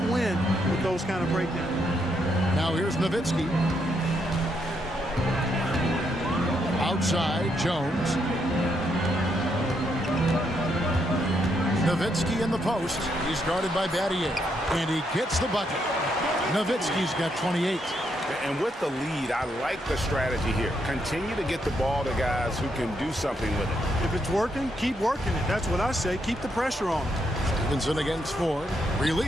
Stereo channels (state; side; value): normal; both; correlation 0.77